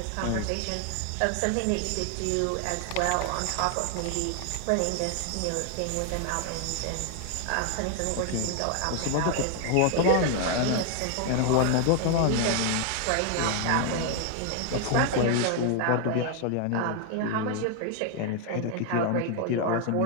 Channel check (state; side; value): different; both; correlation 0.00